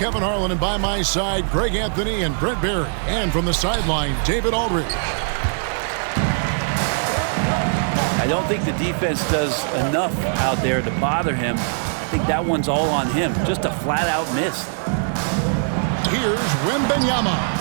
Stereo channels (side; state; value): left; silent; digital silence